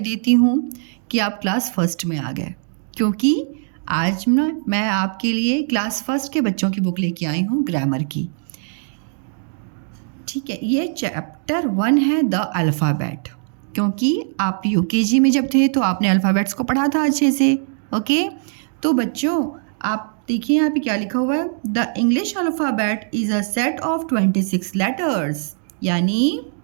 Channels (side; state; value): left; silent; 65 dB below the other